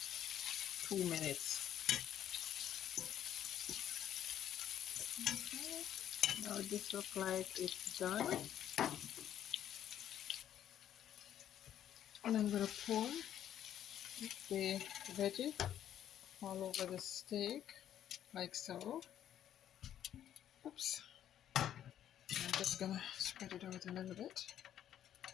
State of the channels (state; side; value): quieter; right; 10.7 dB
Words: 2 minutes. Okay. Now this looks like it's done. And I'm going to pour the veggie all over the steak, like so. Oops. I'm just going to spread it out a little bit.